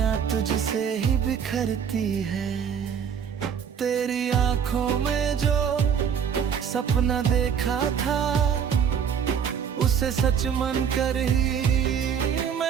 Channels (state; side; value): quieter; left; 7.7 dB